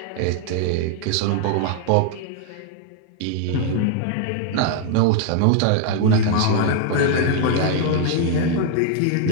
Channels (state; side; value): different; both; correlation 0.00